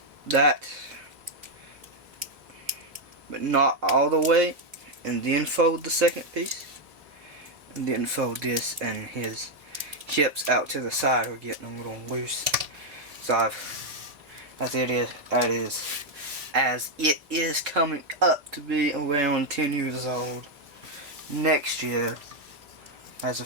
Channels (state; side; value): late; left; 3.5 ms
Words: that, but not all the way, and then fold the second piece, and then fold this, and his hips out to the side are getting a little loose. So as it is coming up to be around 10 years old next year, as